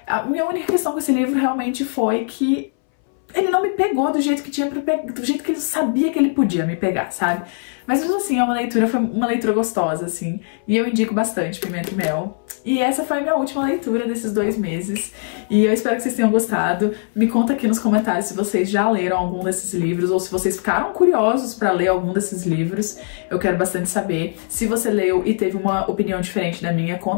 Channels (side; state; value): right; silent; 63 dB below the other